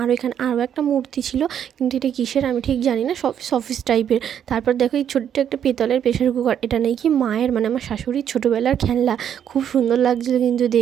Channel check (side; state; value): left; quieter; 9.1 dB